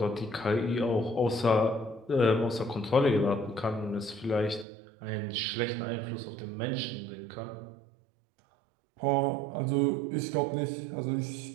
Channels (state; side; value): drops out; left; at 4.7 s